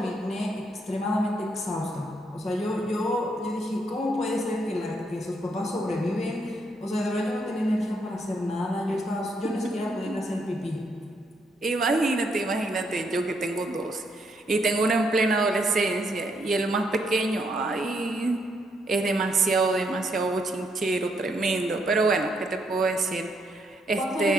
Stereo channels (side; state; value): both; normal; correlation 0.75